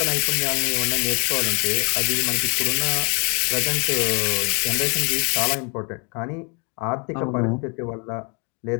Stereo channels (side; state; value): right; quieter; 34.4 dB